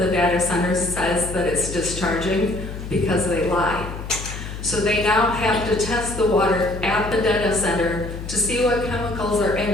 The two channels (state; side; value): noise; left; hum, 9 dB below the sound